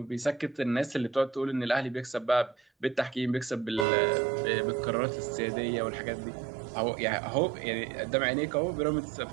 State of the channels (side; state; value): left; drops out; at 3.9 s